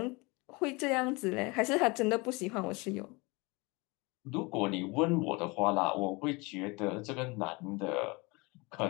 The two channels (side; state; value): right; quieter; 26.1 dB